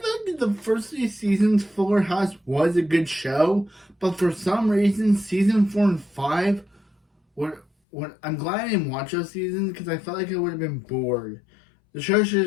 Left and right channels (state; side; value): drops out; right; at 7.7 s